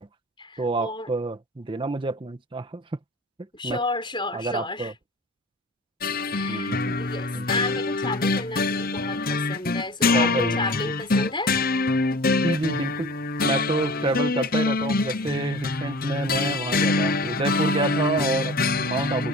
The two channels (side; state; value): both; normal; correlation 0.40